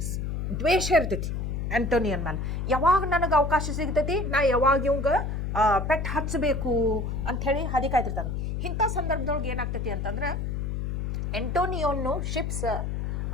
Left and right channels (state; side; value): noise; left; hum, 2 dB below the sound